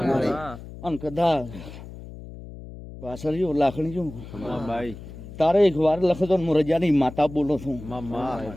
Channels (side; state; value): left; noise; hum, 14 dB below the sound